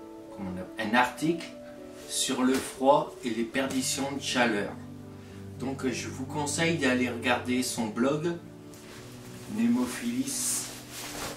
un article sur le froid et les perditions de chaleur. Donc je vous conseille d'aller regarder son blog Némophilis.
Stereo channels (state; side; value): identical; both; correlation 1.00